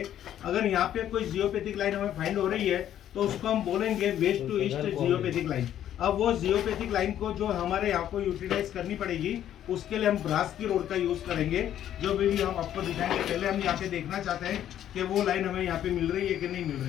अगर यहाँ पे कोई जियोपैथिक लाइन हमें फाइंड हो रही है तो उसको हम बोलेंगे west to east geopathic line. अब वो जियोपैथिक लाइन को जो हमारे यहाँ को यूटिलाइज करनी पड़ेगी उसके लिए हम ब्रास की रोड का यूज करेंगे, जो भी हम आपको दिखाएंगे। पहले हम यहाँ पे देखना चाहते हैं कि वो लाइन हमें यहाँ पे मिल रही है कि नहीं मिल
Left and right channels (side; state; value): right; quieter; 11.0 dB